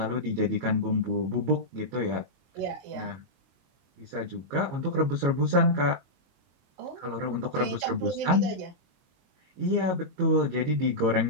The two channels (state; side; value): late; left; 22 ms